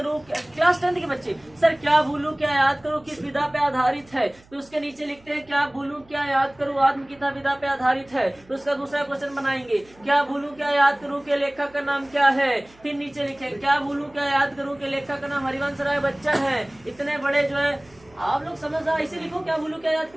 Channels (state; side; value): noise; right; hum, 28 dB below the sound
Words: क्लास 10 के बच्चे, सर क्या भूलूं क्या याद करूं किस विधा पे आधारित है, तो उसके नीचे लिखते हैं क्या भूलूं क्या याद करूं आत्मकथा विधा पे आधारित है। तो उसका दूसरा क्वेश्चन बनाएंगे, क्या भूलूं क्या याद करूं के लेखक का नाम क्या है। फिर नीचे लिखे क्या भूलूं क्या याद करूं के लेखक का नाम हरिवंश राय बच्चन है। इतने बड़े जो है आप लोग समझ रहा, ऐसे लिखो क्या भूलूं क्या याद